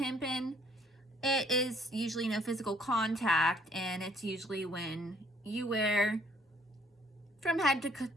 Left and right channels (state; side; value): normal; both; correlation 0.63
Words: It is usually no physical contact, and it's usually when you wear from head to